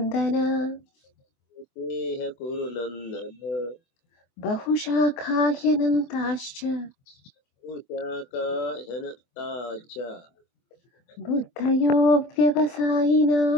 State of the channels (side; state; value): right; late; 24 ms